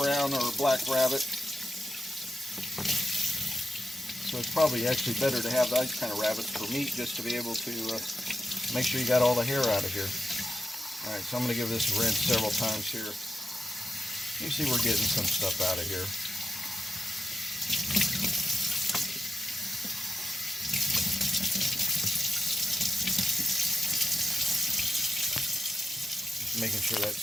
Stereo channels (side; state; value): both; normal; correlation 0.90